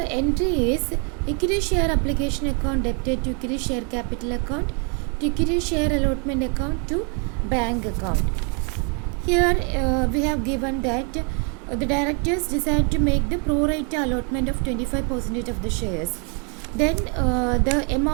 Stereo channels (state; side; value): quieter; left; 37.2 dB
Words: entry is equity share application account debited to equity share capital account to equity share allotment account to bank account. Here we have given that the directors decide to make the pro rata allotment of 25% of the shares. Then the